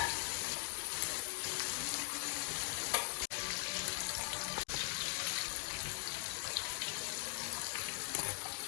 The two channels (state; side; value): silent; right; 50 dB below the other